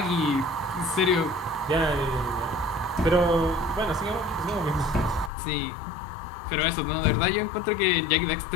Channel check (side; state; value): right; drops out; at 5.3 s